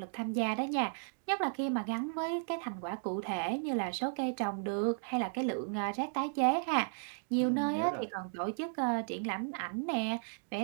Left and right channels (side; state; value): left; silent; digital silence